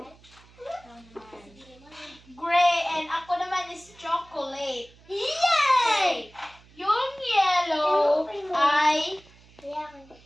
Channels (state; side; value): noise; right; hum, 26 dB below the sound